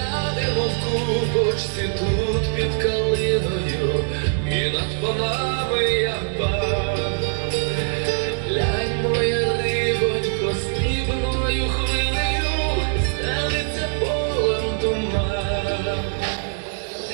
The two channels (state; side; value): silent; left; digital silence